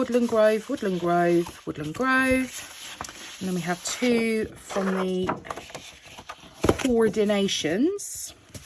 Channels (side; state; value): both; identical; correlation 1.00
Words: Grove, Woodland Grove, Woodland Grove. And then we have 2 from the Coordinations.